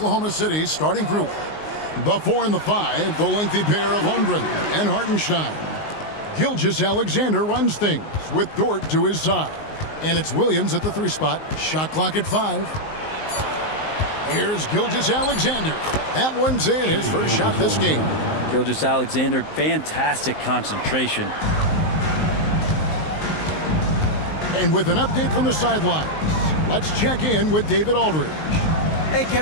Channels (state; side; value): late; right; 19 ms